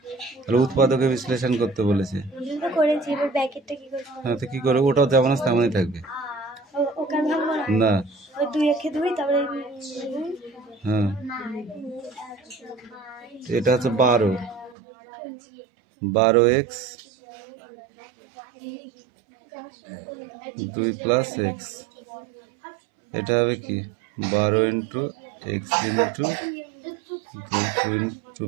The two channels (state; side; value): drops out; left; at 14.8 s